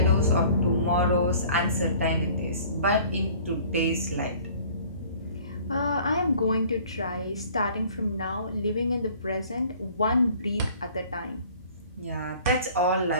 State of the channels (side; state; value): both; inverted; correlation -0.51